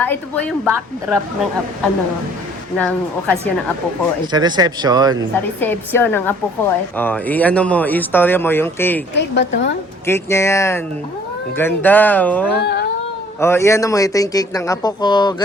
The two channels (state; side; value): normal; both; correlation 0.56